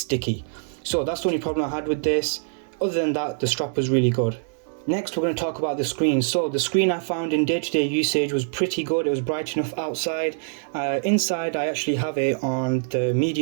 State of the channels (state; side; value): silent; left; 62 dB below the other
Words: So that's the only problem I had with this. Other than that, the strap was really good. Next, we're going to talk about the screen. So the screen I found in day-to-day usage was pretty good. It was bright enough outside. Inside, I actually have it on the